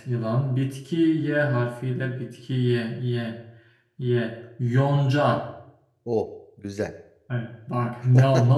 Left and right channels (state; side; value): identical; both; correlation 1.00